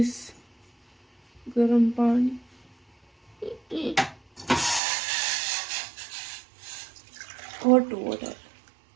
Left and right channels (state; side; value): drops out; left; at 4.8 s